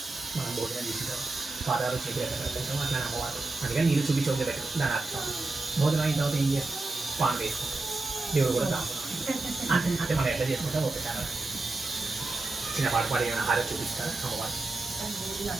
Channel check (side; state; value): left; quieter; 3.2 dB